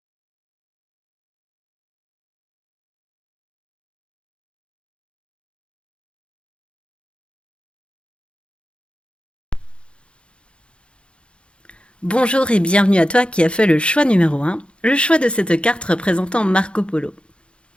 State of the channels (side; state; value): right; late; 0.057 ms